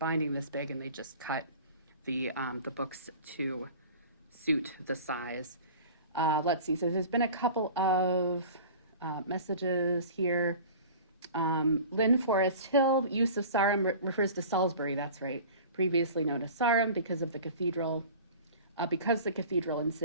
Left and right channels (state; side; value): inverted; both; correlation -0.40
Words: this big, and they just cut the books to suit the size. Let's see, so there's been a couple of messages here. Lynn Forest Hill, use of Sarum refers to Salisbury, that's right, previously known as Sarum because of the cathedral. Because the cathedral and